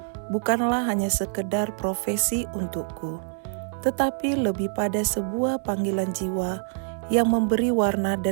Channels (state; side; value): silent; left; 61 dB below the other